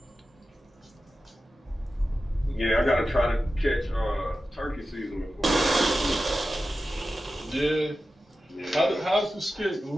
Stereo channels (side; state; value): both; normal; correlation 0.93